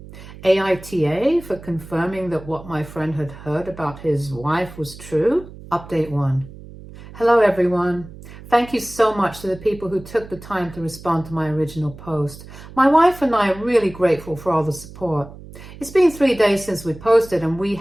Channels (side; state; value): right; noise; hum, 16 dB below the sound